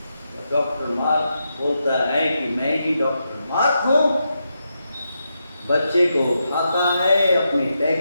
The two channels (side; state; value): both; inverted; correlation -0.85